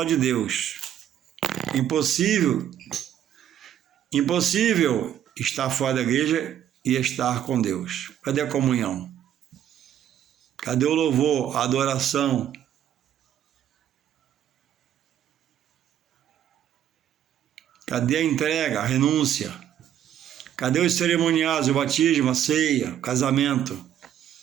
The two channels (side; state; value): left; quieter; 10.5 dB